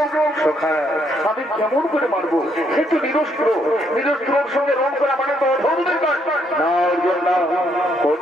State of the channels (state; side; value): normal; both; correlation 0.72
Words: আমি কেমন করে মারবো? সে তো নিরস্ত্র, নিরস্ত্রর সঙ্গে রং করা মানে তো অধর্মের কাজ। না অর্জুন না,